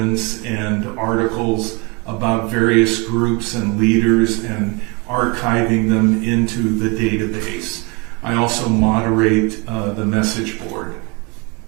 and articles about various groups and leaders and archiving them into the database. I also moderate the message board.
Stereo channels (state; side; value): quieter; left; 30.0 dB